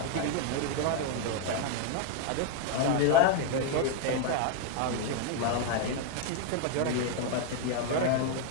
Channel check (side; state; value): both; different; correlation 0.00